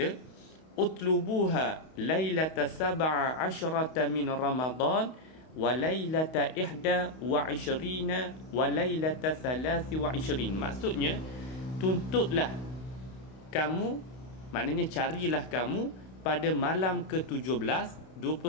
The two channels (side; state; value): right; late; 32 ms